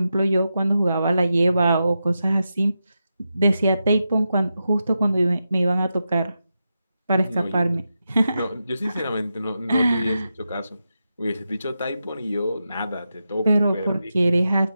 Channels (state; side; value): inverted; both; correlation -0.89